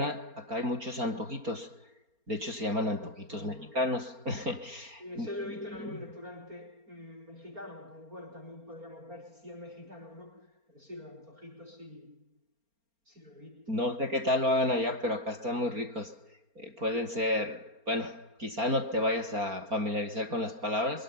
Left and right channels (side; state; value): left; late; 4.3 ms